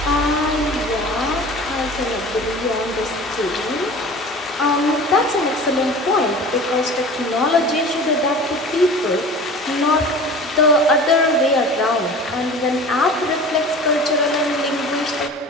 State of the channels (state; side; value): normal; both; correlation 0.39